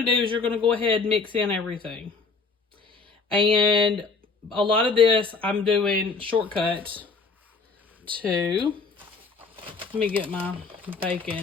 to do is you're going to go ahead and mix in everything. And a lot of this I'm doing shortcut to, let me get my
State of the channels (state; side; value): quieter; right; 4.5 dB